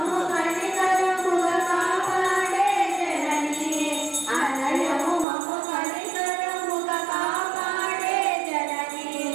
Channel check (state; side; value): drops out; left; at 5.2 s